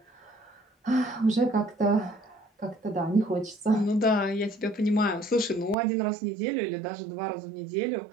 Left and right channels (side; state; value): left; drops out; at 5.8 s